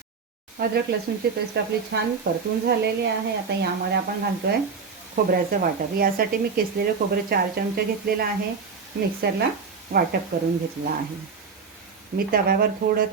अद्रक लसूणची पेस्ट आपली छान परतून झालेली आहे. आता यामध्ये आपण घालतोय खोबऱ्याचं वाटप. यासाठी मी किसलेलं खोबरं 4 चमचे घेतलेलं आहे. मिक्सरला वाटप करून घेतलं आहे. मी तव्यावर थोडं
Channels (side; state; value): left; quieter; 5.3 dB